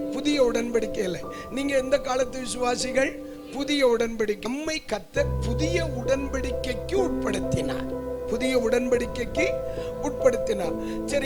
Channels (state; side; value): identical; both; correlation 1.00